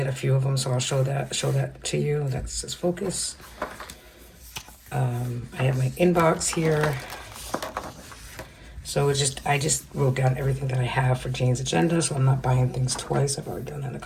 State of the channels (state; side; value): identical; both; correlation 1.00